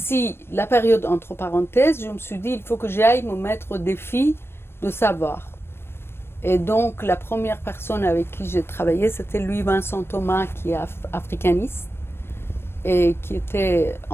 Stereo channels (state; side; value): late; right; 0.12 ms